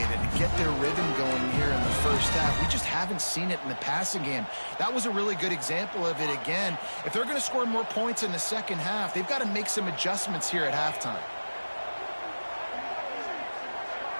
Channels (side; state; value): both; inverted; correlation -1.00